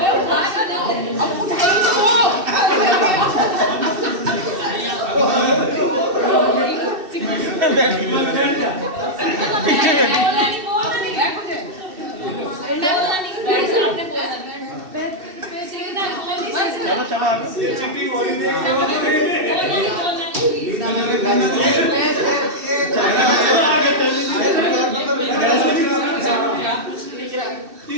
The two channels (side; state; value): left; late; 2.7 ms